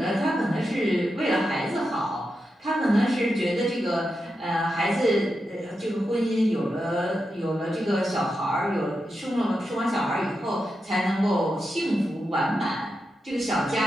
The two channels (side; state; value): both; normal; correlation 0.88